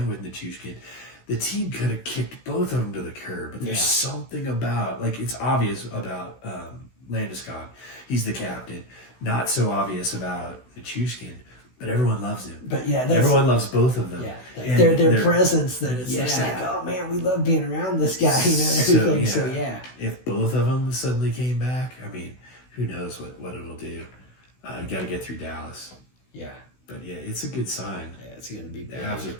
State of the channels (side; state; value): right; late; 16 ms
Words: with Nichushkin, the team could have kicked both of them to the curb. But there's something about, like, it's obvious about Landeskog. He's the captain. Not so obvious about Nichushkin. But everyone loves him. But everyone loves both of them. Yeah, their presence. That it's just like, oh man, we love being around this guy, and everything. So if both of them suddenly came back, I mean, who knows what it'll do? You got to get through Dallas. Yeah. But yeah, it's a good sign. Yeah, it's going to be big. The Avs are